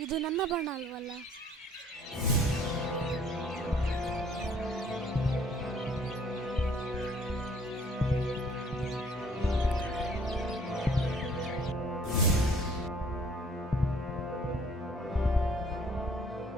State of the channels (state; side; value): normal; both; correlation 0.58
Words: ಇದು ನನ್ನ ಬಣ್ಣ ಅಲ್ವಲ್ಲ?